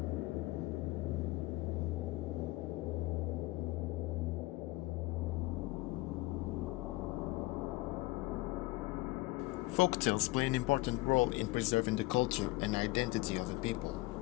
Folktales play an important role in preserving the culture and identity of a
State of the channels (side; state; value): right; quieter; 21.1 dB